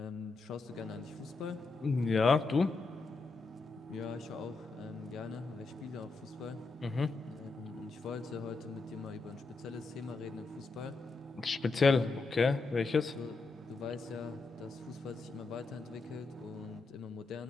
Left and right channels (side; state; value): right; quieter; 3.8 dB